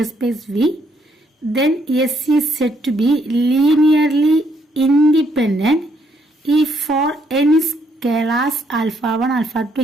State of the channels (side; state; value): both; normal; correlation 0.72